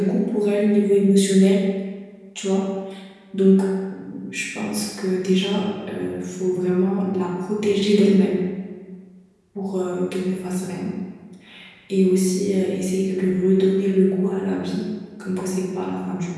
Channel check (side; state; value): both; identical; correlation 1.00